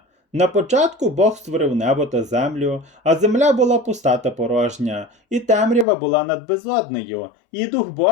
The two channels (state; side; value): drops out; right; at 5.9 s